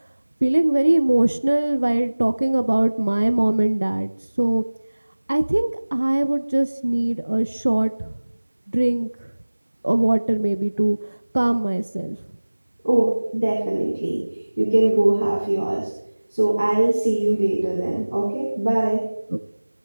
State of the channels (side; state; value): both; inverted; correlation -1.00